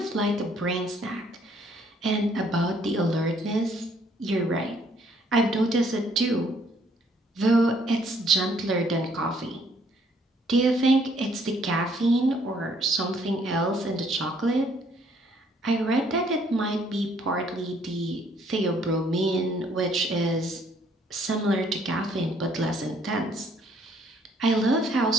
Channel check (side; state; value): both; normal; correlation 0.64